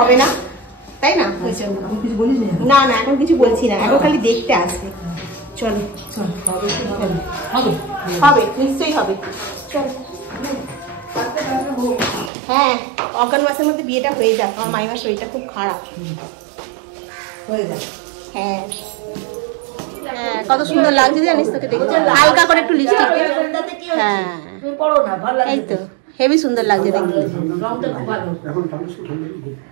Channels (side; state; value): left; drops out; at 12.3 s